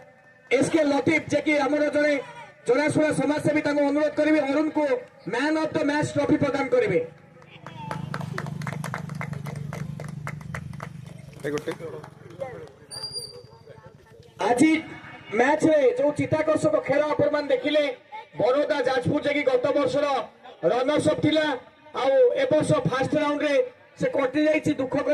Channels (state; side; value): identical; both; correlation 1.00